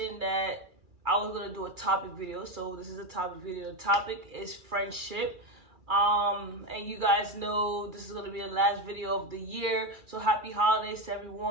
that I was gonna do a topic video, so this is a topic video. The topic is friendship. And you guys know this is gonna be the last video of the year. So happy holidays to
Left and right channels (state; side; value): late; left; 2.3 ms